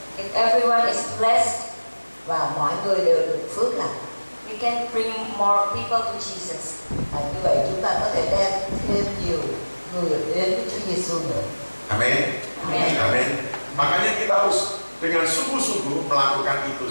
If everyone is blessed, Và mọi người đều được phước lành. we can bring more people to Jesus. Như vậy chúng ta có thể đem thêm nhiều người đến với Chúa Giêsu nữa. Amin. Amin. Amin. Makanya kita harus dengan sungguh-sungguh melakukan itu,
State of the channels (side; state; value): both; inverted; correlation -1.00